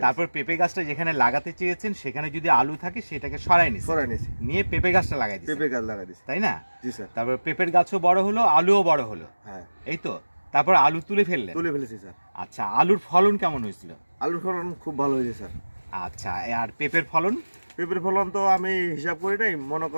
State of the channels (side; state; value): both; inverted; correlation -1.00